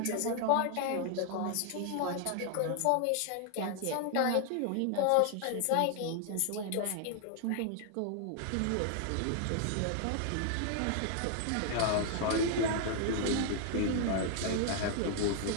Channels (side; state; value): both; different; correlation 0.00